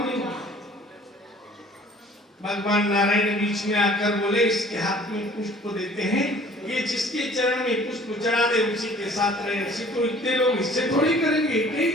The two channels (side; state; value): both; normal; correlation 0.51